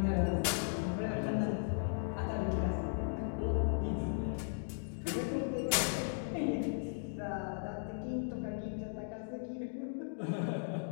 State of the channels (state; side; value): silent; right; digital silence